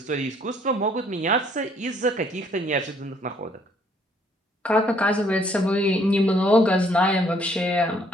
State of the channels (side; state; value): both; normal; correlation 0.64